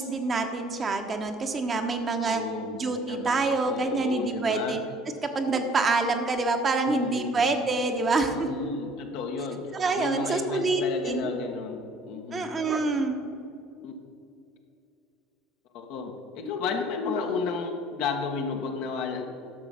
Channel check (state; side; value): normal; both; correlation 0.55